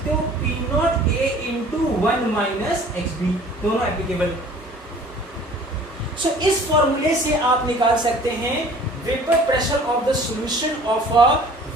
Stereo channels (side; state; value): both; normal; correlation 0.49